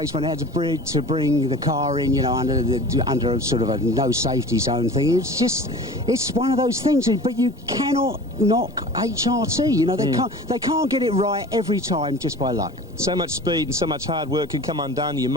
when he had to bring the car in, under a sort of a no safety zone thing. It's one of those things, but you cannot knock HRT. They can't get it right every time just by luck. So much speed and so much hard work can come undone. You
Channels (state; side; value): normal; both; correlation 0.39